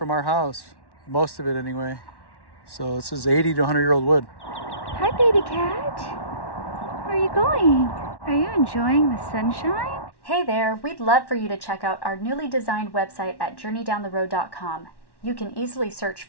our house. Most of it anyway. So this is 80 to 100-year-old wood. Hi, baby cat. Where are you going? Are you enjoying the sunshine? Hey there, we'd love for you to check out our newly designed website at journeydowntheroad.com. You can easily search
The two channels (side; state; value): right; late; 1.1 ms